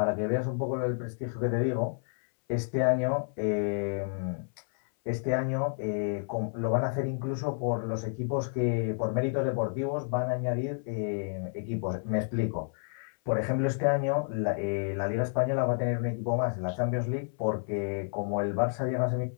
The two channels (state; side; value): silent; right; 58 dB below the other